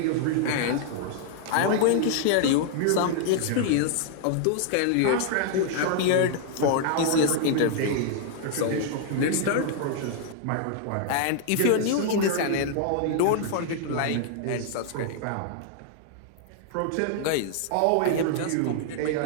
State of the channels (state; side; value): different; both; correlation -0.01